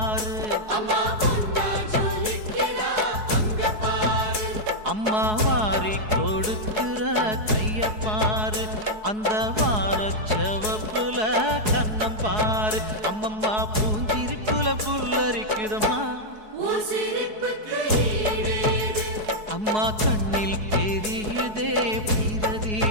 அம்மா வாரி கொடுக்கிற கைய பாரு, அந்த வானச்சவப்புல கண்ணம் பாரு. அம்மம்மா பூஞ்சிரிப்புல புல்லரிக்குதம்மா, அம்மா கண்ணில் தெரியுதே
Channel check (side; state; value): left; late; 4.7 ms